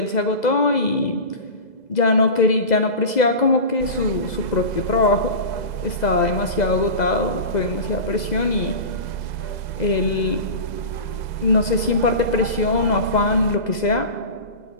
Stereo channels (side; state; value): right; late; 2.0 ms